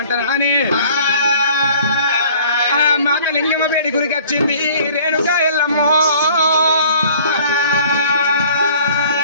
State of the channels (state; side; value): inverted; both; correlation -0.52